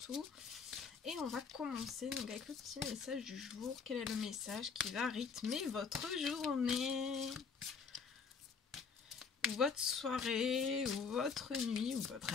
Et on va commencer donc avec le petit message du jour. Quel est le message qui va rythmer votre journée, ou votre soirée, ou votre nuit, ou votre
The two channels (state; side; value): quieter; right; 5.6 dB